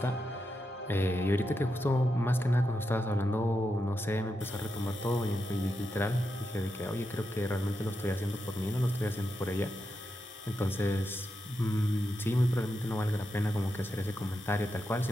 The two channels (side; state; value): both; normal; correlation 0.86